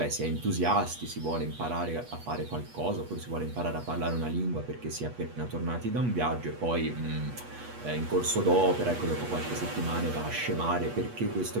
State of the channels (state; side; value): late; left; 8.3 ms